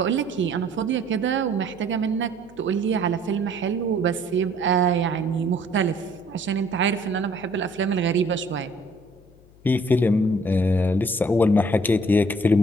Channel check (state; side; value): noise; left; hum, 27 dB below the sound